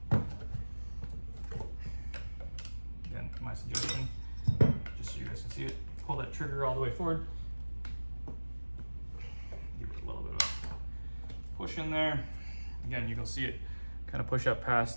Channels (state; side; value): inverted; both; correlation -1.00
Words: Again, my suggestion, just so you guys can see it, pull that trigger all the way forward. Give it a little bit of a push in there. Again, you can see it kind of push up